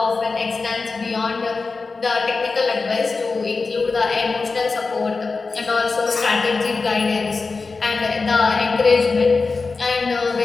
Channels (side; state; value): right; quieter; 4.2 dB